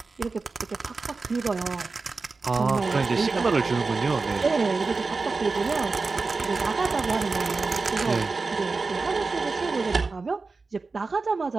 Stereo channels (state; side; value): quieter; left; 4.0 dB